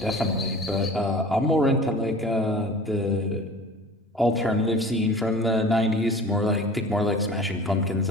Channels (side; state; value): both; normal; correlation 0.41